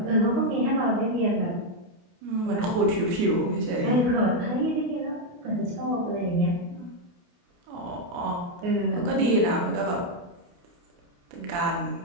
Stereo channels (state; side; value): late; left; 29 ms